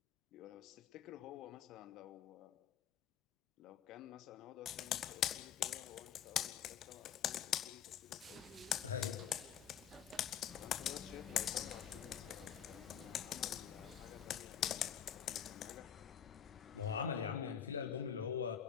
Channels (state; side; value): quieter; right; 9.1 dB